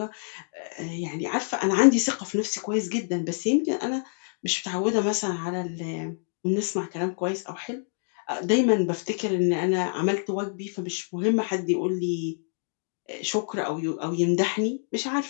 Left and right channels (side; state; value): right; silent; digital silence